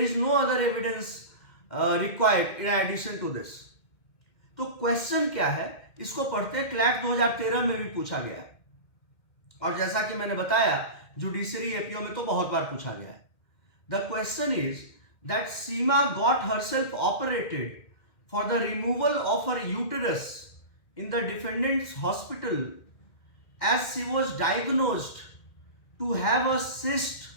is no other evidence required in addition to this. तो क्वेश्चन क्या है, इसको पढ़ते क्लैट 2013 में भी पूछा गया, और जैसा कि मैंने बताया जुडिशरी एपीओ में तो बहुत बार पूछा गया है. The question is that Seema got herself operated for the removal of her uterus in the defendant's hospital as she was diagnosed to have a cyst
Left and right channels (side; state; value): right; late; 2.1 ms